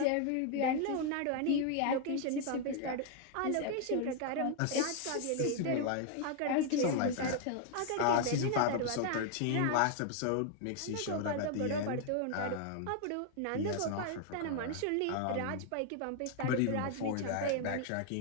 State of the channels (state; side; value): different; both; correlation 0.00